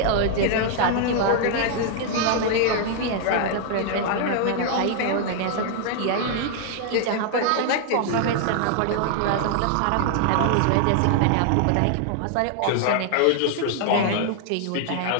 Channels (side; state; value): both; different; correlation 0.00